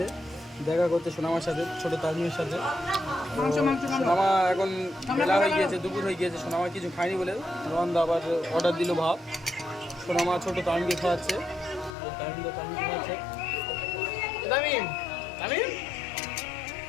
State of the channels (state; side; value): drops out; right; at 12.0 s